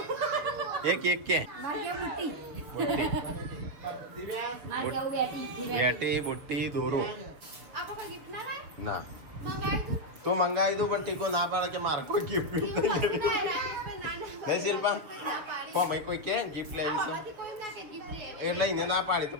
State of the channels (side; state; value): left; late; 6.6 ms